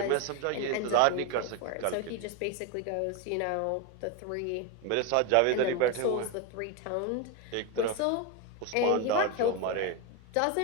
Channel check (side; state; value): both; different; correlation 0.02